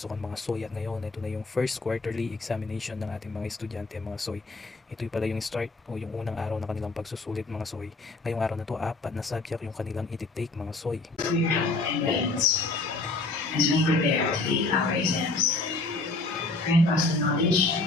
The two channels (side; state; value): right; quieter; 3.4 dB